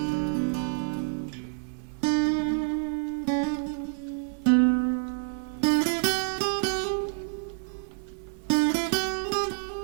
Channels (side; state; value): left; silent; 59 dB below the other